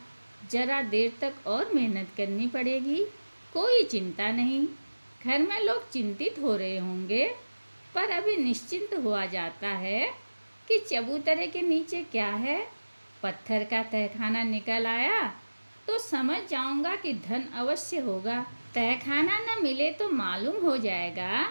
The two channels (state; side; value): inverted; both; correlation -1.00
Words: जरा देर तक और मेहनत करनी पड़ेगी। कोई चिंता नहीं। घर में लोग चिंतित हो रहे होंगे, पर अभी निश्चिंत हुआ जाता है कि चबूतरे के नीचे क्या है। पत्थर का तहखाना निकल आया तो समझ जाऊंगा कि धन अवश्य होगा। तहखाना न मिले तो मालूम हो जाएगा